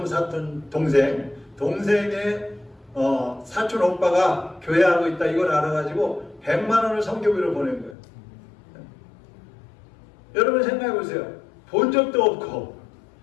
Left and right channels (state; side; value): drops out; right; at 8.0 s